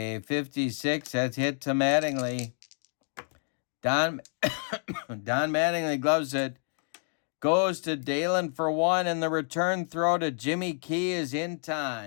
56. That's hit to Mattingly. Don Mattingly gloves it. Goes to Dalen for 1, and the return throw to Jimmy Key is in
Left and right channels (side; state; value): right; silent; digital silence